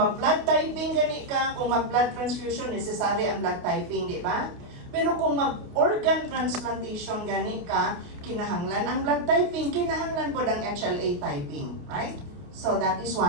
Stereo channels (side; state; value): left; late; 28 ms